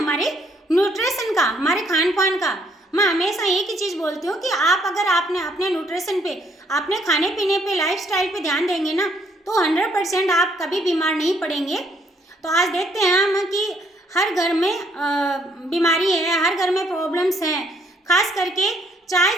न्यूट्रिशन का, हमारे खान पान का। मैं हमेशा एक ही चीज़ बोलती हूँ कि आप अगर आपने अपने न्यूट्रिशन पे, अपने खाने पीने पे, लाइफस्टाइल पे ध्यान देंगे ना, तो 100% आप कभी बीमार नहीं पड़ेंगे। तो आज देखते हैं हम कि हर घर में बीमारी है, हर घर में प्रॉब्लम्स हैं, खास करके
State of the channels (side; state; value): both; normal; correlation 0.67